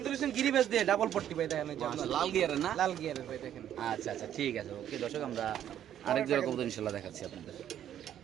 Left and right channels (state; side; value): quieter; left; 10.6 dB